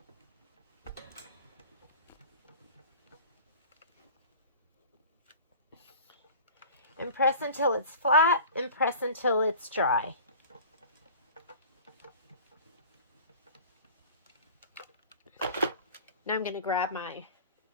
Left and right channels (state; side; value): inverted; both; correlation -0.41